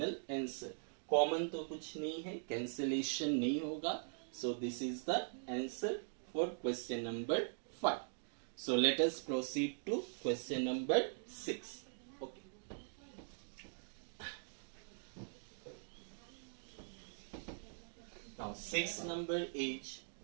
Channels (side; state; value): left; silent; digital silence